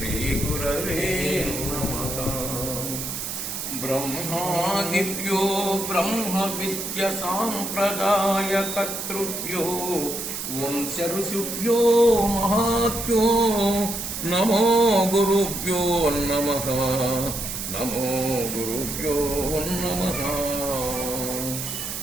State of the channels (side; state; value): right; noise; hiss, 5 dB below the sound